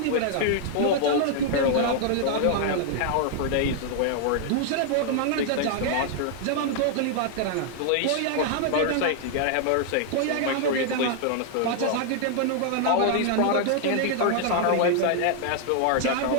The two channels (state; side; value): different; both; correlation 0.00